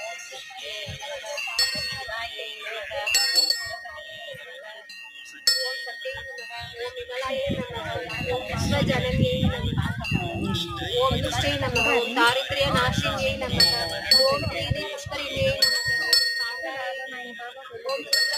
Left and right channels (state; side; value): identical; both; correlation 1.00